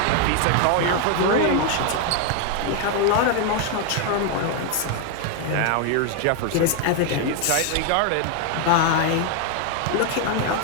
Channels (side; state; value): both; different; correlation 0.00